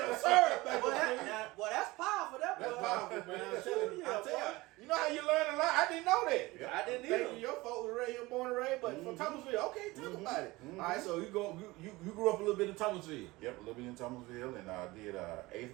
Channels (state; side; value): quieter; left; 20.9 dB